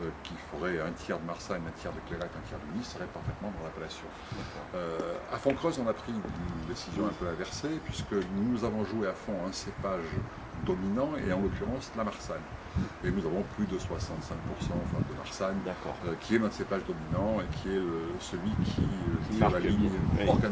qui ferait un tiers de Marsanne, un tiers de Clairette, un tiers de Nice serait parfaitement dans l'appellation. À Fontcreuse, on a pris une décision un peu inversée, puisque nous avons joué à fond un cépage dominant, et en l'occurrence la Marsanne. Et nous avons plus de 65% de Marsanne, qui est notre cépage dominant et qui est celui qui est la ligne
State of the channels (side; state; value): both; identical; correlation 1.00